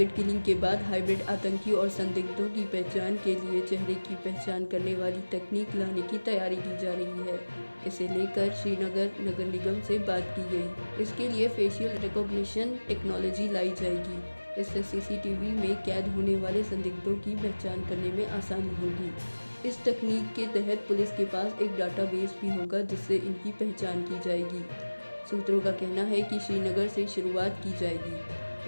किलिंग के बाद हाइब्रिड आतंकियों और संदिग्धों की पहचान के लिए चेहरे की पहचान करने वाली तकनीक लाने की तैयारी की जा रही है। इसे लेकर श्रीनगर नगर निगम से बात की गई। इसके लिए फेशियल रिकॉग्निशन टेक्नोलॉजी लाई जाएगी। इससे CCTV में कैद होने वाले संदिग्धों की पहचान करने में आसानी होगी। इस तकनीक के तहत पुलिस के पास एक डाटाबेस भी होगा जिससे इनकी पहचान की जाएगी। सूत्रों का कहना है कि श्रीनगर से शुरुआत की जाएगी।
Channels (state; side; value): inverted; both; correlation -1.00